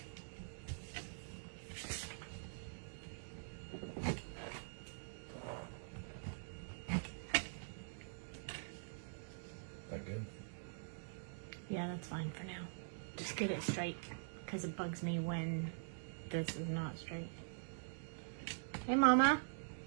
That good? Yeah, that's fine for now. Just get it straight, because it bugs me when this is not straight. Hey, Mama.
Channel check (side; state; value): left; silent; digital silence